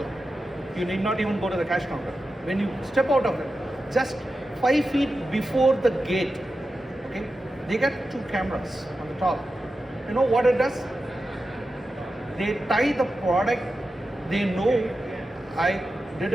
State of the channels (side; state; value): both; normal; correlation 0.92